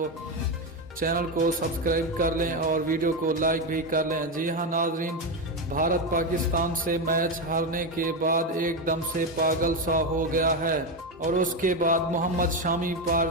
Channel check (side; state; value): both; normal; correlation 0.11